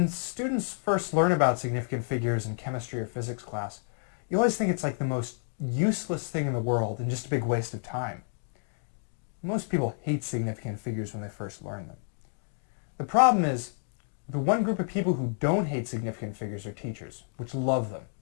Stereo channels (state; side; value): silent; right; digital silence